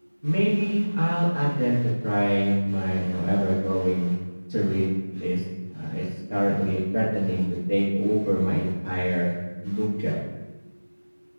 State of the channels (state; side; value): inverted; both; correlation -1.00